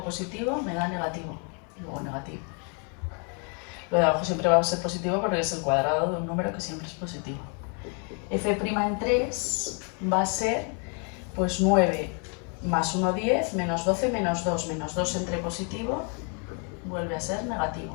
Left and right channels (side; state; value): right; quieter; 38.1 dB